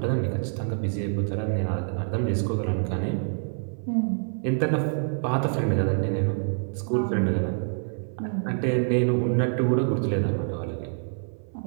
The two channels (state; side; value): silent; left; 57 dB below the other